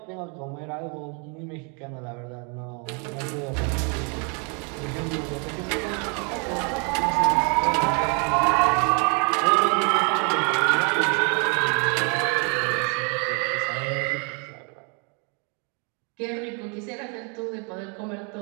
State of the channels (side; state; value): left; quieter; 35.6 dB